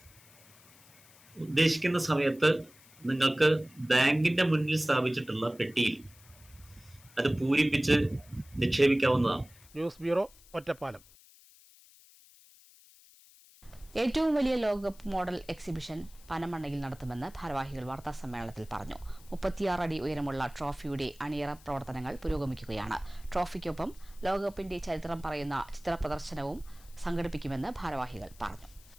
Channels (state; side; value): noise; left; hiss, 25 dB below the sound